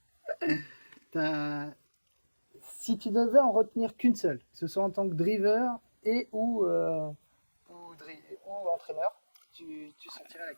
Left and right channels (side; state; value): both; inverted; correlation -1.00